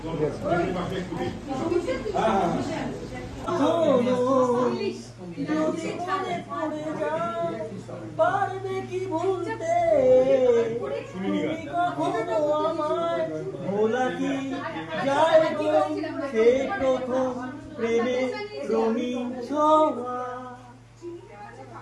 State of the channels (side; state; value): both; identical; correlation 1.00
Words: পারবে কি ভুলতে তুমি কখনো আমায় ভোলা কি যায় গো সে প্রথম প্রেমে রঙিন ছোঁয়া